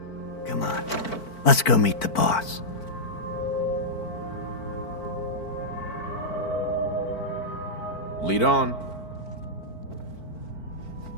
Come on. Let's go meet the boss. Lead on.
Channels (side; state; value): right; late; 4.5 ms